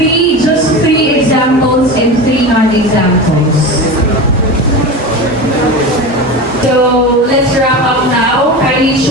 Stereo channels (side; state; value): both; normal; correlation 0.27